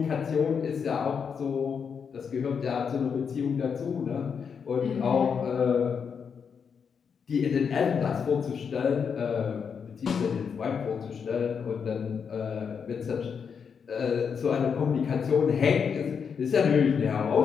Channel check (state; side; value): quieter; right; 6.5 dB